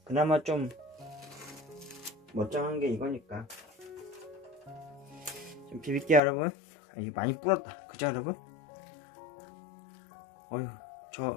그나마 좀 멀쩡한 게 이거니까. 좀 비빌게요 여러분. 이게 많이 불었다, 그죠 여러분?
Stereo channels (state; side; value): drops out; right; at 6.2 s